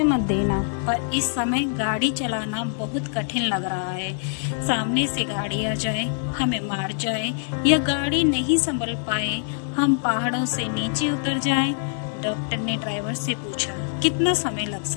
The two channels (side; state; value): right; silent; digital silence